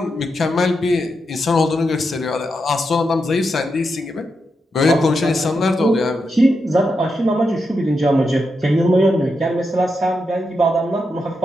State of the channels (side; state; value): both; normal; correlation 0.85